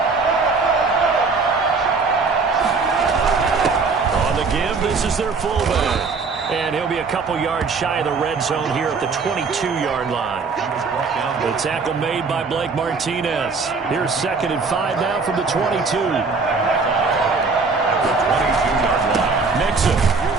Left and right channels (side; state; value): left; quieter; 4.5 dB